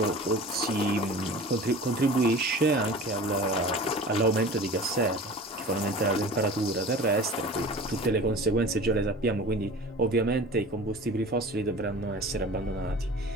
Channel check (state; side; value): normal; both; correlation 0.39